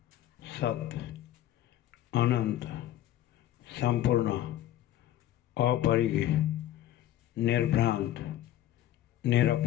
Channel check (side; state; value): right; quieter; 12.9 dB